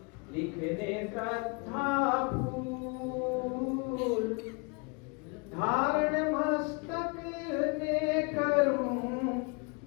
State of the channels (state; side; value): quieter; right; 32.6 dB